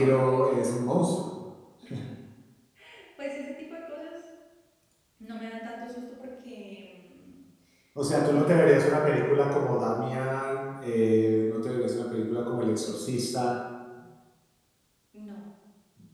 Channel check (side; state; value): both; identical; correlation 1.00